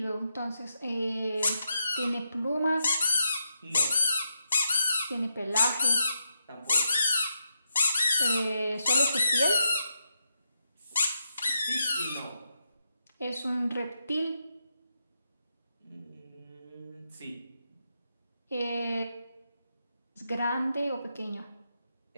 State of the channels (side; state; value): both; inverted; correlation -0.83